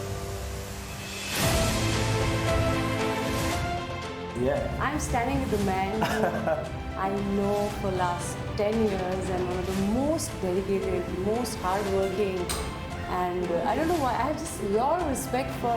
Yeah. I'm standing with the man who I know for last 10 years and one of the most dedicated, most hardworking, and I don't know why, I have just a lot of respect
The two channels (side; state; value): both; identical; correlation 1.00